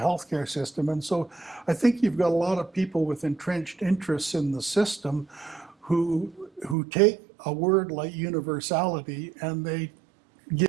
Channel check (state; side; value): drops out; left; at 6.8 s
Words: system. And so I think you've got a lot of people with entrenched interests in the system who take a word like universality and they